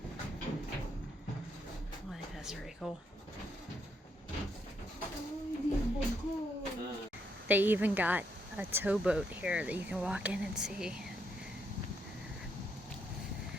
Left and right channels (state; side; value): normal; both; correlation 0.76